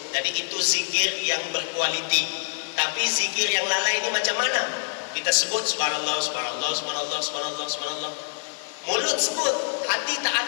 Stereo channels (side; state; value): right; silent; digital silence